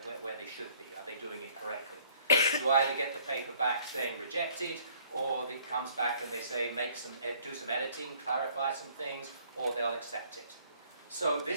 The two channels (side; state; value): both; inverted; correlation -0.59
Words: they should be? Are they doing it correctly? You either get the paper back saying rejected, or it comes back and they say do some editing, clarify some things, or they'll accept it. So